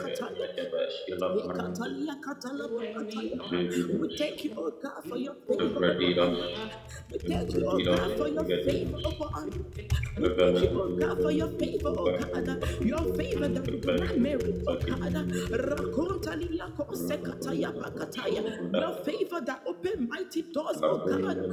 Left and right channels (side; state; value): both; identical; correlation 1.00